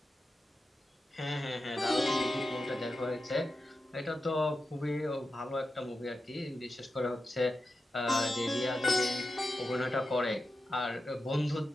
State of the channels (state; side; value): normal; both; correlation 0.90